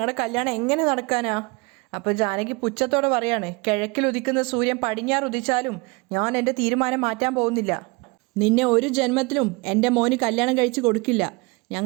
കല്യാണം എങ്ങനെ നടക്കാനാ? അപ്പോൾ ജാനകി പുച്ഛത്തോടെ പറയാണ്, കിഴക്കിൽ ഉദിക്കുന്ന സൂര്യൻ പടിഞ്ഞാറ് ഉദിച്ചാലും ഞാൻ എൻ്റെ തീരുമാനം മാറ്റാൻ പോകുന്നില്ല. നിന്നെ ഒരു ജന്മത്തിലും എൻ്റെ മോന് കല്യാണം കഴിച്ച് കൊടുക്കില്ല.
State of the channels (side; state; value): left; quieter; 27.0 dB